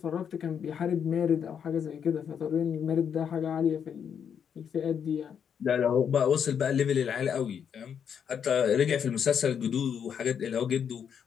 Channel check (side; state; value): right; quieter; 7.8 dB